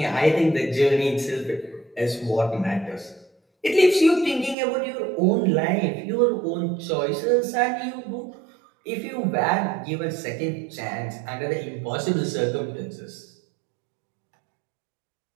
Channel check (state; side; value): drops out; left; at 4.5 s